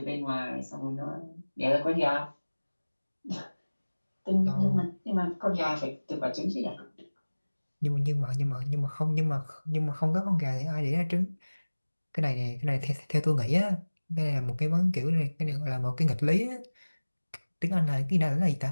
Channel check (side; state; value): both; inverted; correlation -1.00